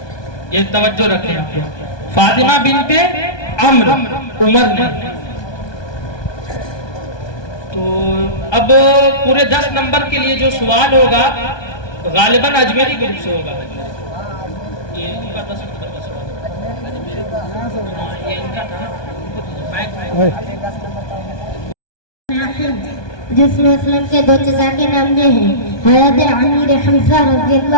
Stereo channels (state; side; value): late; right; 1.2 ms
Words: ये तवज्जो रखें, फातिमा बिनते अम्र, उमर नहीं। तो अब पूरे 10 नंबर के लिए जो सवाल होगा गालिबन अजमेरी ग्रुप से होगा। ये इनका 10 नंबर का सवाल, ये इनका था। जिसमें इस्लाम के 2 चचा के नाम ये हैं, हज़रत अमीर हमज़ा